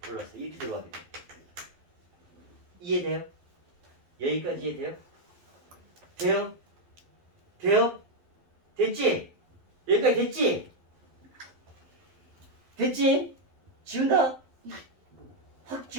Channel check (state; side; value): late; left; 12 ms